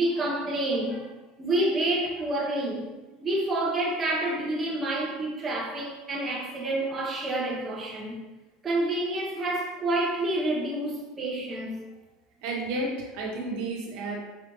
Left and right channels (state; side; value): normal; both; correlation 0.50